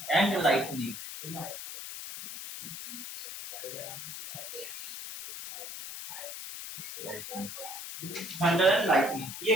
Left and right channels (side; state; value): left; noise; hiss, 9 dB below the sound